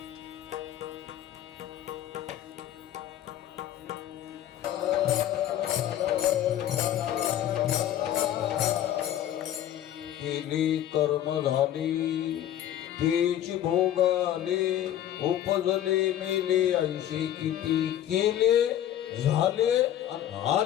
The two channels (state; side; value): quieter; right; 11.6 dB